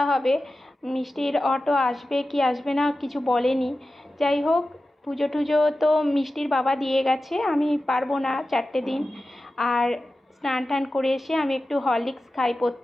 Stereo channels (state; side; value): normal; both; correlation 0.94